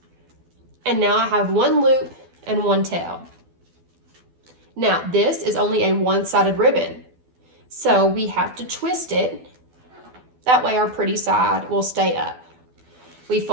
And now I have 1 loop and 1 tail. Now, this is only a 1-sided ribbon, so we have to twist it. That way our pretty side will stay up. We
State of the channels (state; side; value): late; left; 12 ms